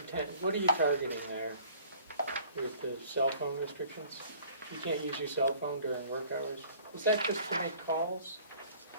what are you targeting there with the cell phone restrictions? You can't use your cell phone during work hours? Is that just to make calls,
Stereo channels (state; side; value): inverted; both; correlation -0.53